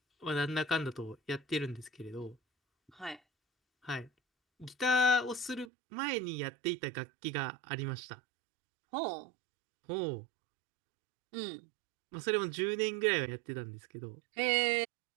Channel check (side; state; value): left; drops out; at 5.7 s